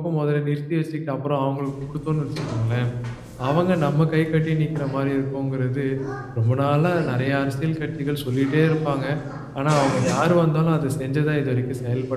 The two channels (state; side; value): identical; both; correlation 1.00